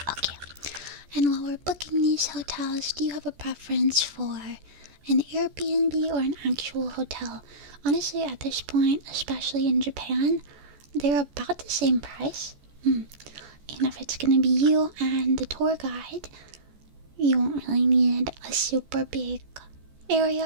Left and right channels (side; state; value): left; late; 14 ms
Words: And while we're booking these hotels, do you have a preference for an Airbnb or an actual hotel? Honestly, at this point, especially in Japan, they're about the same price. And if it's going to be you and the tour guide, you won't really need a super big